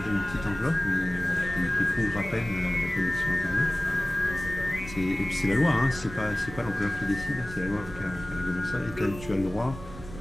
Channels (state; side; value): noise; right; rumble, 13 dB below the sound